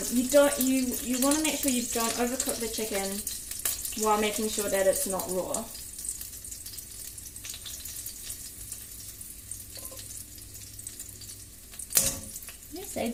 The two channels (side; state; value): both; identical; correlation 1.00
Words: want to make sure you don't overcook the chicken while making sure that it's not raw. I say,